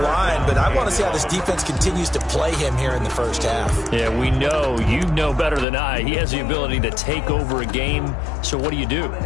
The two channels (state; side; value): drops out; right; at 5.7 s